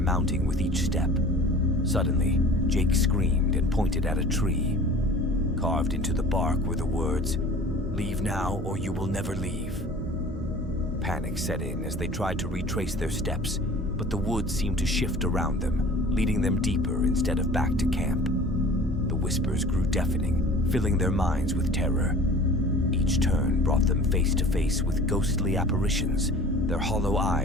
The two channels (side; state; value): both; normal; correlation 0.44